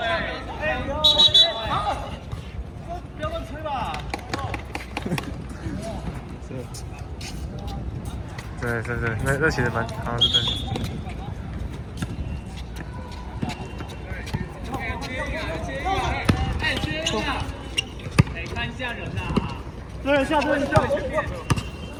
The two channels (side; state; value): both; identical; correlation 1.00